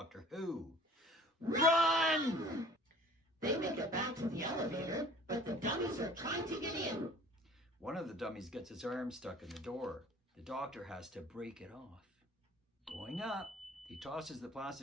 Who. Run! They make it back to the elevator, but the dummies are trying to get in. One of the dummies gets his arm stuck in the door. The Doctor has to break it off. Going up, he tosses the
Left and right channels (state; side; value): normal; both; correlation 0.49